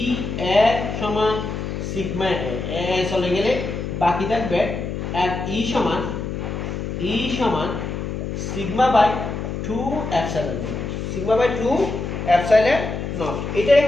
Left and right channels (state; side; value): noise; left; hum, 4 dB below the sound